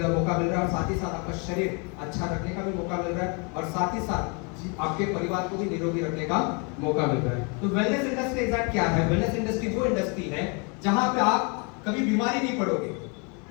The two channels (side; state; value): right; quieter; 33.8 dB